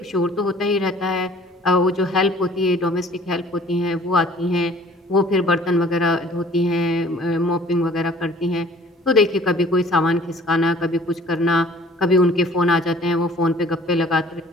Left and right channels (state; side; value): normal; both; correlation 0.52